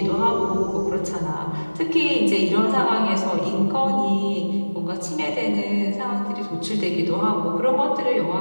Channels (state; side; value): inverted; both; correlation -1.00